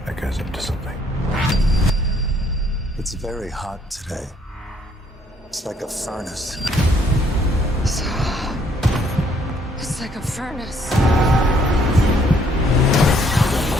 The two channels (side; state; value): both; normal; correlation 0.66